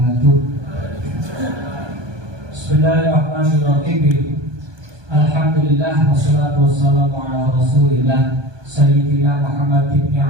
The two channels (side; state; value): left; late; 1.2 ms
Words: Bismillahirrahmanirrahim. Alhamdulillah wassalatu wassalamu ala Rasulillah Sayyidina Muhammad ibn